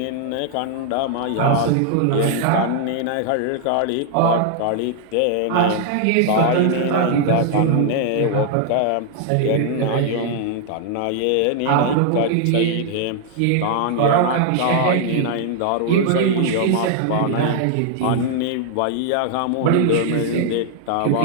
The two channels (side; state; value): both; different; correlation 0.00